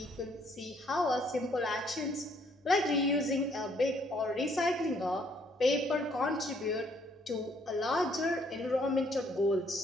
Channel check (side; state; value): both; normal; correlation 0.66